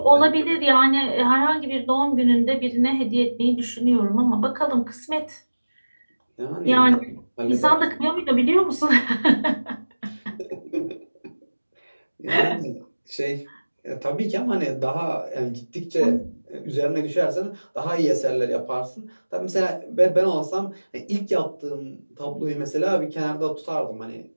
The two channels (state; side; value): inverted; both; correlation -1.00